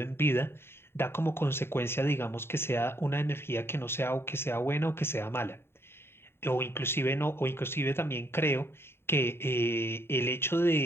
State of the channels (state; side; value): late; right; 0.11 ms